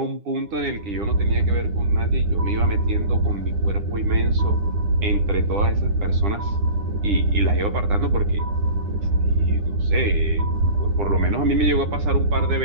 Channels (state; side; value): late; left; 9.9 ms